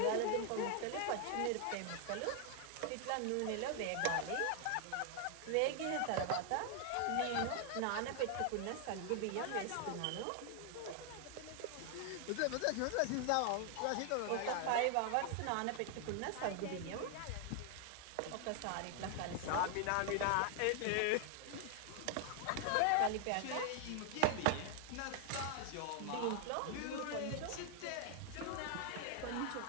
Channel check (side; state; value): both; different; correlation 0.00